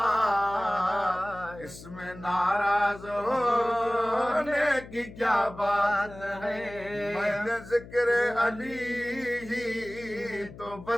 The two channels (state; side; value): noise; left; hum, 16 dB below the sound